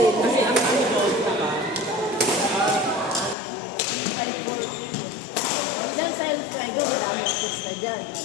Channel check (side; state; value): right; drops out; at 3.4 s